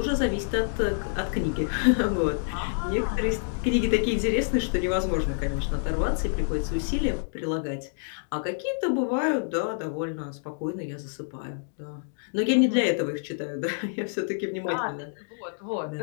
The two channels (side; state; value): right; silent; digital silence